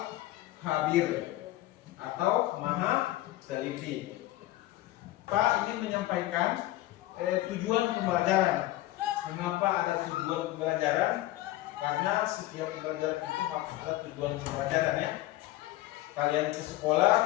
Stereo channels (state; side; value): quieter; right; 16.2 dB